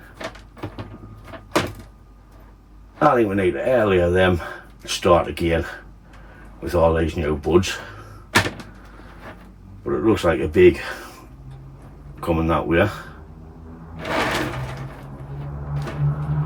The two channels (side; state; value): both; identical; correlation 1.00